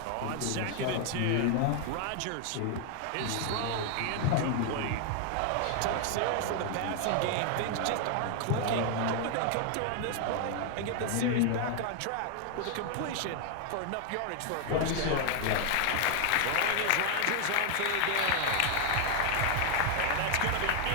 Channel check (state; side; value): different; both; correlation 0.00